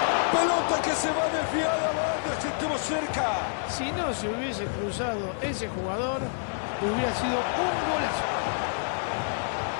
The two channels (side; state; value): right; silent; digital silence